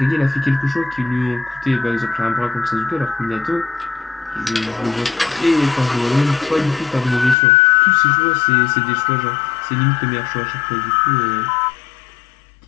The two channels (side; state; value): right; drops out; at 7.4 s